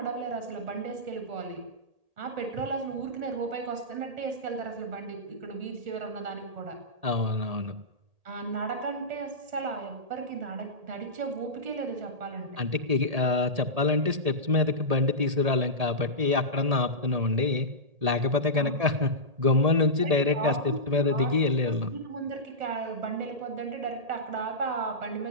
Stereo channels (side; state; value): left; late; 1.8 ms